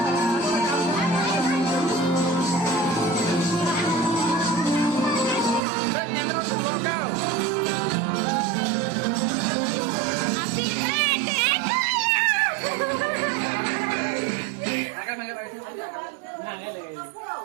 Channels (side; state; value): left; drops out; at 5.6 s